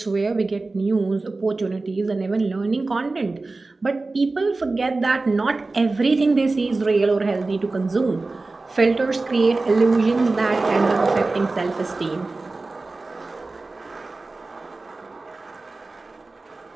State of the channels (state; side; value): quieter; left; 3.4 dB